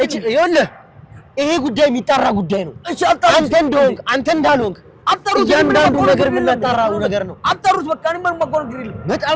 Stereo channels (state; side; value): identical; both; correlation 1.00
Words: ይኸውልህ ይሄ ጉዳይ የሚጣራ ጉዳይ ነው። አንተ እንደሆንክ አንተ እንዳልሆንክ አጣሩት። እያንዳንዱ ነገር የምናጣራው ነገር ነው። አጣሩት በቃ እኔ ምንም ማቆርጥ ይል በጣም